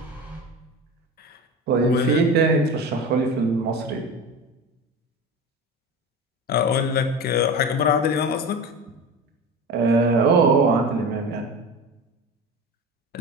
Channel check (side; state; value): both; normal; correlation 0.28